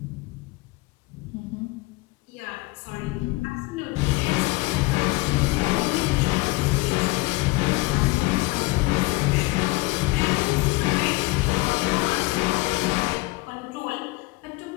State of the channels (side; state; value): right; quieter; 22.9 dB